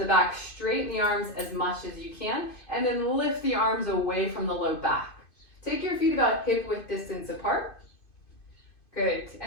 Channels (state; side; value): late; right; 2.5 ms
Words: back, straighten the arms as much as you can, and then lift the arms away from the low back. Take your feet about hip width distance apart. Good.